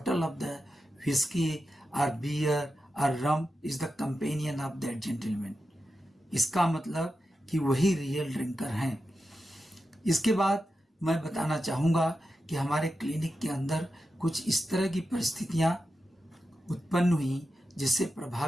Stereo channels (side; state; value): both; normal; correlation 0.90